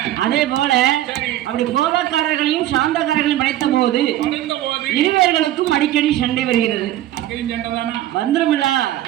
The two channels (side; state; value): left; quieter; 13.6 dB